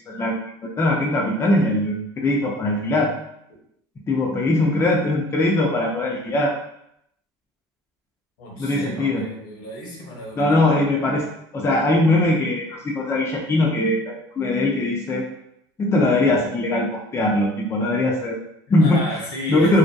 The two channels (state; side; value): normal; both; correlation 0.52